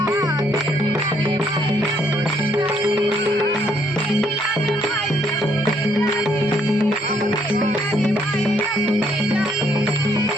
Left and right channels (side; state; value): both; normal; correlation 0.69